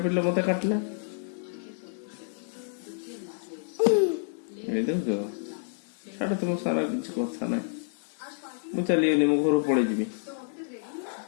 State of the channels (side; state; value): right; silent; 56 dB below the other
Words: पिटलो मते काटला ए देखो छाड़ तुम सारा किसी कथा ना मु चलिए मो घर पड़े जी